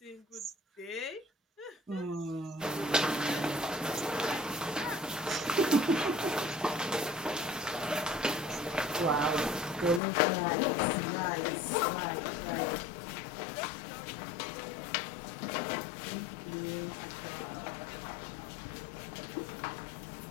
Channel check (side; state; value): right; drops out; at 10.0 s